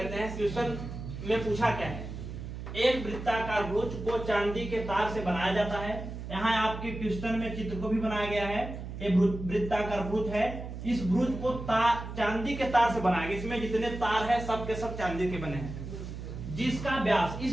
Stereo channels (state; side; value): noise; right; hum, 8 dB below the sound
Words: हैं। क्वेश्चन में पूछा क्या है, एक वृत्ताकार भुज को चांदी के तार से बनाया जाता है। यहाँ आपके क्वेश्चन में चित्र को भी बनाया गया है। ये वृत्ताकार भुज है, इस भुज को चांदी के तार से बनाया गया। इसमें जितने तार है सब के सब चांदी के बने हैं, जिसका व्यास,